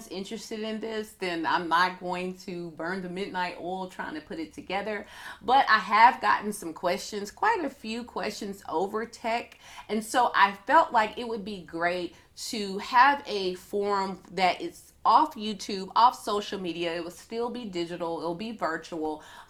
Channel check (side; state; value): both; identical; correlation 1.00